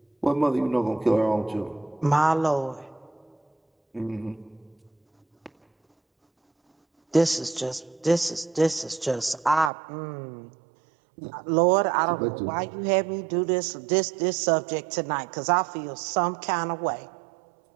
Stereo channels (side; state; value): left; drops out; at 9.7 s